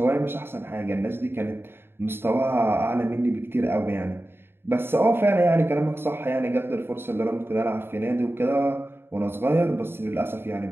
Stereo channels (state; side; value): late; left; 0.11 ms